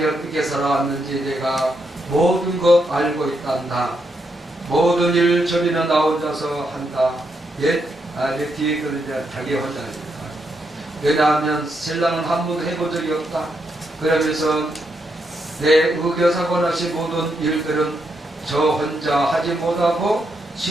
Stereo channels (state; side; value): normal; both; correlation 0.80